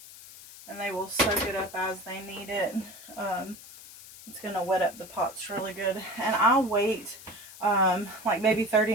and they will soak it up as they need it. It's going to wet up the pots really good. And I'll wait like maybe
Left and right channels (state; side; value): noise; left; hiss, 17 dB below the sound